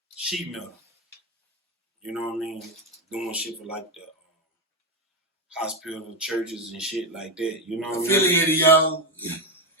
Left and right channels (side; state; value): both; normal; correlation 0.10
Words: sheet metal. You know what I mean? Doing shit for like the hospital, churches, and shit like that. You know what I mean? Affiliated, y'all.